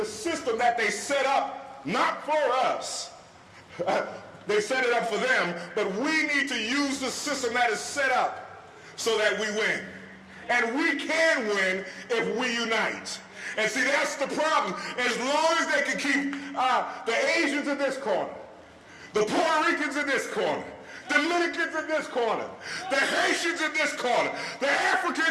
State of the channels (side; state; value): both; identical; correlation 1.00